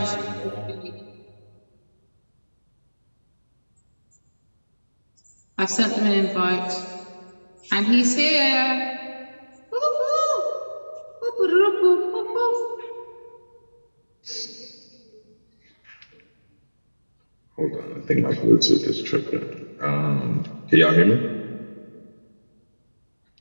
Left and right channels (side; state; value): both; inverted; correlation -1.00